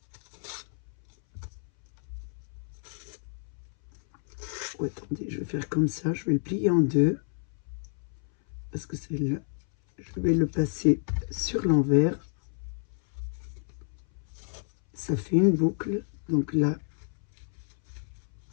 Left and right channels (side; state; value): right; silent; 58 dB below the other